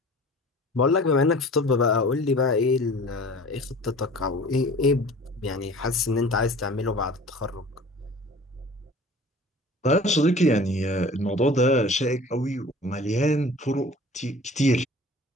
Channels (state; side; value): normal; both; correlation 0.44